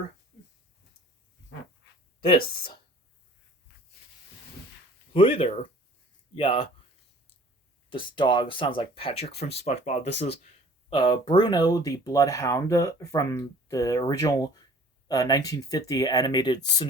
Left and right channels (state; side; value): normal; both; correlation 0.51